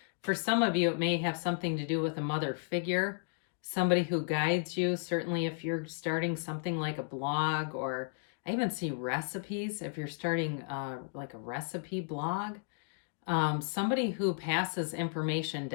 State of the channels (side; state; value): right; silent; 55 dB below the other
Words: for some of you, it may have something to do with a mother figure, somebody who guides you. Certainly if you're starting something like a blog, or I even see recipes, if you're starting like a recipe blog, somebody who passes information